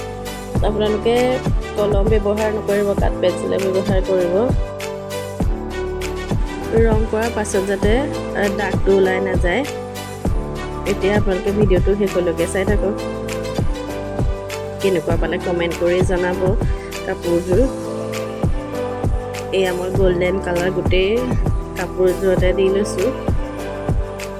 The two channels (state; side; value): identical; both; correlation 1.00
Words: আপোনালোকে কলম ব্যৱহাৰ নকৰিব, কাট পেঞ্চিলে ব্যৱহাৰ কৰিব। ৰং কৰাৰ পাছত যাতে দাগটো ওলাই নাযায়। এতিয়া আপোনালোকে ভিডিঅ'টো শেষলৈকে চাই থাকক। কেনেকুৱা পালে কমেণ্ট কৰি জনাব কাপোৰযোৰ। এয়া মই গল্ডেন কালাৰ গোটেই কাপোৰযোৰতে দি লৈছোঁ।